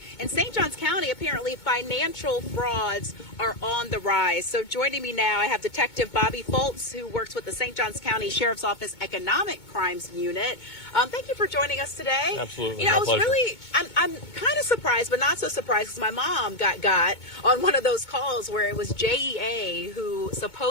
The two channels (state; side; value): late; right; 2.2 ms